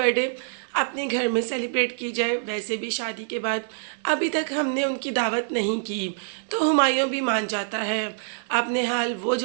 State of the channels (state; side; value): silent; left; digital silence